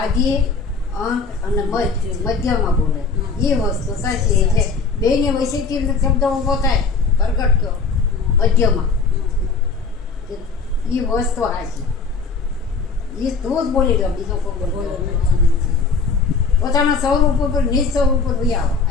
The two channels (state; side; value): quieter; right; 4.7 dB